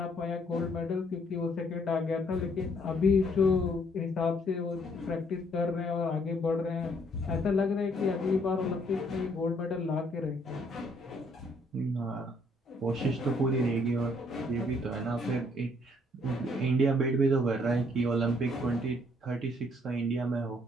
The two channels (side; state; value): both; normal; correlation 0.66